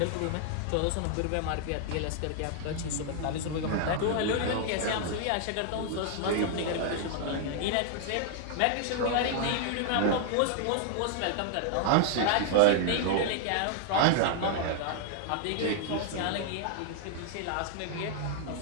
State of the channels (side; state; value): both; different; correlation -0.01